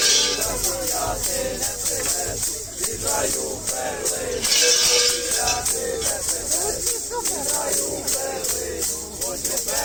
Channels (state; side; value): identical; both; correlation 1.00